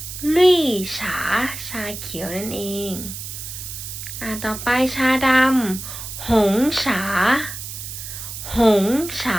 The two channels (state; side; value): noise; right; hiss, 9 dB below the sound